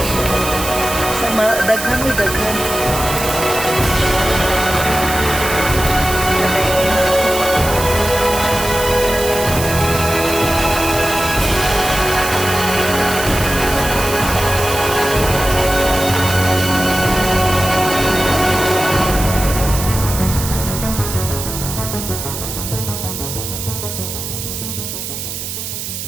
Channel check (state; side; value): noise; right; hiss, 6 dB below the sound